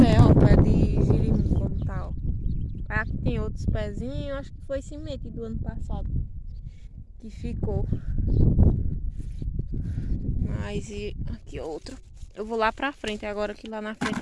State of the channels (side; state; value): both; identical; correlation 1.00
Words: ó. Pé de girimum, como tá, ó. Aqui tem outros pezinhos. Acho que foi semente do ano passado que ficou. Mas e aqui outro. Eu vou lá pra frente agora, que lá na frente